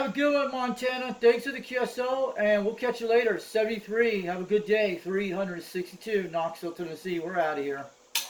a good one, Montana. Thanks for the QSO, and we'll catch you later. 73, have a good day. 362, Knoxville, Tennessee. We're out of here.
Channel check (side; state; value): both; identical; correlation 1.00